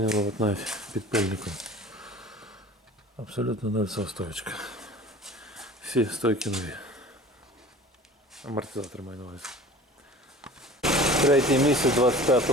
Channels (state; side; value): normal; both; correlation 0.42